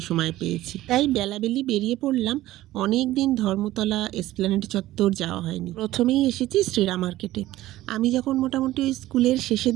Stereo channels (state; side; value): quieter; left; 15.7 dB